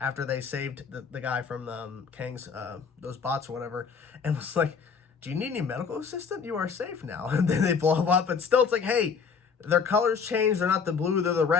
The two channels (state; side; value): quieter; right; 5.9 dB